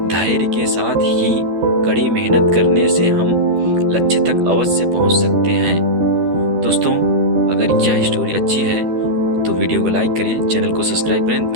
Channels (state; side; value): late; left; 12 ms